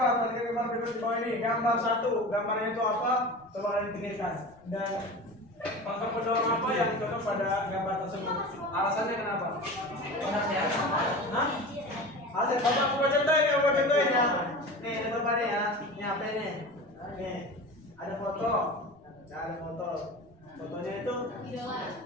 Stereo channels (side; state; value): right; noise; rumble, 29 dB below the sound